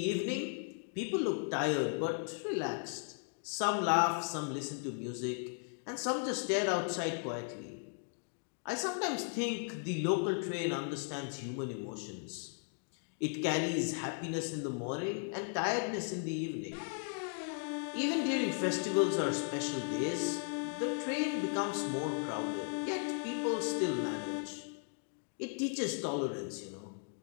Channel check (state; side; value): silent; right; 53 dB below the other